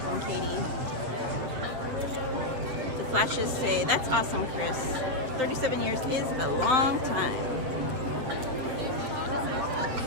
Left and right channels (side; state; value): left; late; 8.1 ms